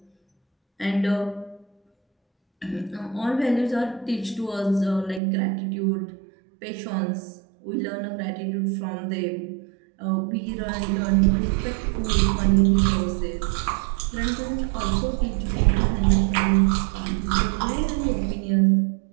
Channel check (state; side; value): drops out; left; at 5.2 s